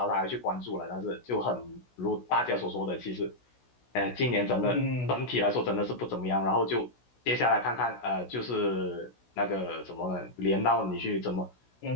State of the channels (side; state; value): right; late; 16 ms